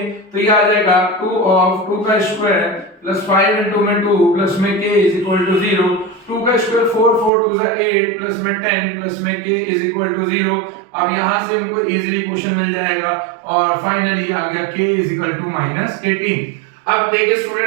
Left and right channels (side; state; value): left; drops out; at 7.3 s